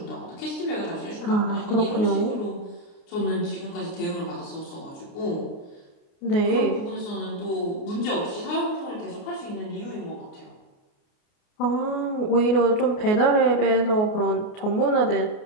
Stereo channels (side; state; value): right; late; 29 ms